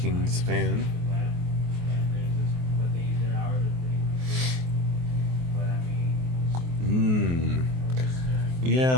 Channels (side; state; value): left; late; 23 ms